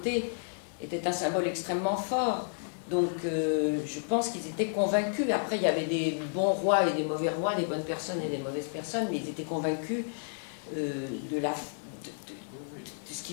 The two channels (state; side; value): silent; right; digital silence